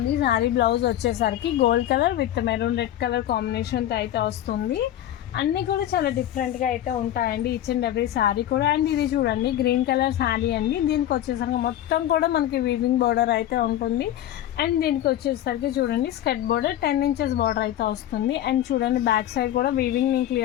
శారీ బ్లౌజ్ వచ్చేసరికి gold colour with maroon red colour కాంబినేషన్తో అయితే వస్తుంది. అన్నీ కూడా చాలా డిఫరెంట్గా అయితే ఉంటాయండి ఈచ్ అండ్ ఎవ్రీ శారీ కూడా. అండ్ ఇది చూడండి గ్రీన్ కలర్ శారీ అండి. దీనికి వచ్చేసరికి మొత్తం కూడా మనకి వీవింగ్ బార్డర్ అయితే ఉంటుంది. అండ్ దీనికి వచ్చేసరికి చూడండి స్కర్ట్ బార్డర్ 10 ఇంచెస్ బార్డర్ అయితే వస్తుంది. అండ్ చూడండి బ్యాక్ సైడ్ కూడా వీవింగ్ నేను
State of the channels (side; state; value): right; quieter; 12.2 dB